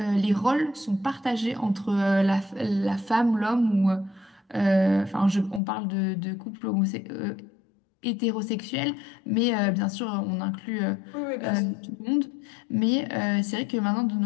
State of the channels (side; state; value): right; drops out; at 5.6 s